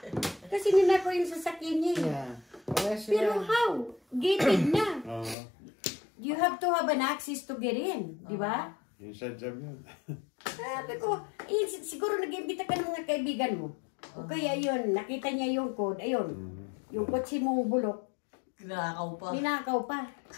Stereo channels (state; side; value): drops out; right; at 5.4 s